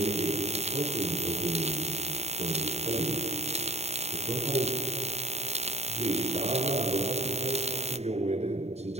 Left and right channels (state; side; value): late; left; 0.31 ms